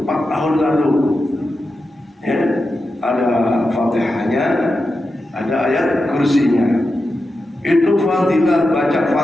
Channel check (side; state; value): both; normal; correlation 0.90